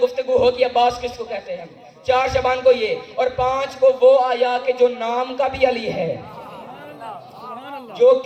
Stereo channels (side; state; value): both; identical; correlation 1.00